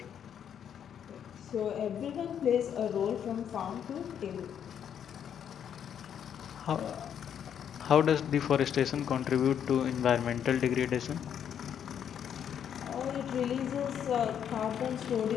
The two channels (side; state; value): right; quieter; 8.8 dB